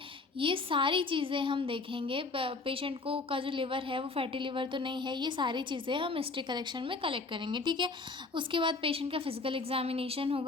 ये सारी चीज़ें हम देखेंगे। पेशेंट को का जो लिवर है वो फैटी लिवर तो नहीं है, ये सारी चीज़ें हम हिस्ट्री कलेक्शन में कलेक्ट करेंगे, ठीक है। उसके बाद पेशेंट का फिजिकल एग्जामिनेशन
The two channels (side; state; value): right; quieter; 3.8 dB